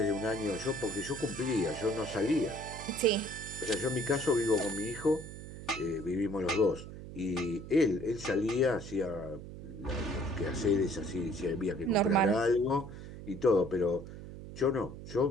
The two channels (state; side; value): noise; right; hum, 12 dB below the sound